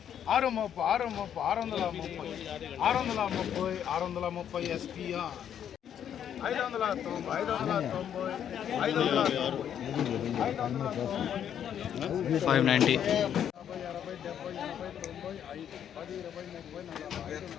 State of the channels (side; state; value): right; quieter; 9.3 dB